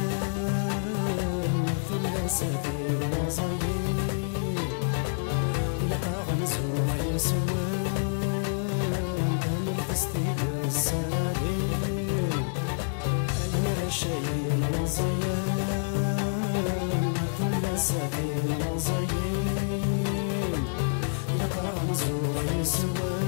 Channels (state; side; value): silent; right; 59 dB below the other